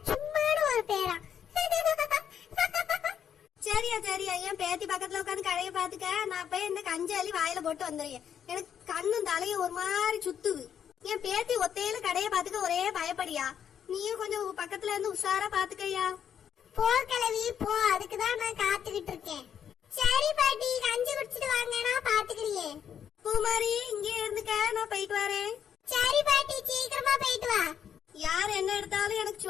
சும்மானு ஒரு பேரா? சரியா சரியா, என் பேத்தி பக்கத்துல உட்காந்து கடையை பாத்துக்க. நான் போய் இந்த கஞ்சி அள்ளி வாயில போட்டு வந்துடுறேன். எனக்கு கண்ணும் தலையும் ஒரு மாதிரி சுத்துது. என் பேத்தி ஒத்தையில கடையை பாத்துக்க ஒரே பயப்படியா? நீயும் கொஞ்சம் பக்கத்துல இருந்து உஷாரா பாத்துக்கையா. போ கிளவி போ. அதுக்குதான் நான் காத்துக்கிட்டு இருக்கேன். சரி பாட்டி, கஞ்சி குடிச்சிட்டு வாங்க. நான் பாத்துக்கிறேன். பூமாரி, இங்கே இருந்துக்க. நான் போயிட்டு வரேன். சரி பாட்டி, சீக்கிரமா போயிட்டு வா. யார் என்ன எடுத்தாலும் எனக்கு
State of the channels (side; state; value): right; quieter; 8.6 dB